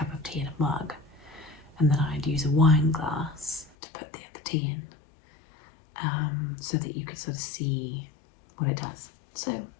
of tea in a mug, and then I'd use a wine glass to put the other tea in, so that you could sort of see what it does. So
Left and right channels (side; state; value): right; drops out; at 3.7 s